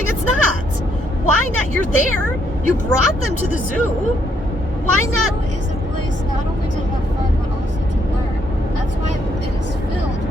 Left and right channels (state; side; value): normal; both; correlation 0.73